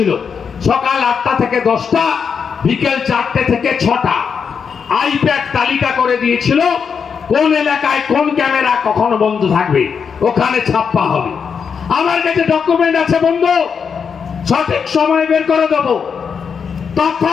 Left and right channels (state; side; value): quieter; right; 6.4 dB